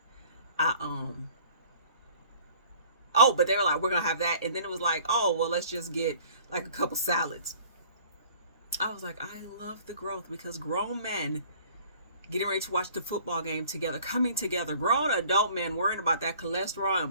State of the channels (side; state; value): both; inverted; correlation -0.52